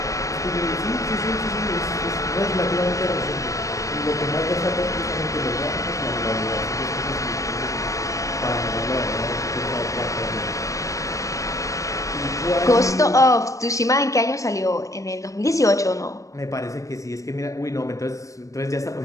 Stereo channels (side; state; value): right; late; 0.16 ms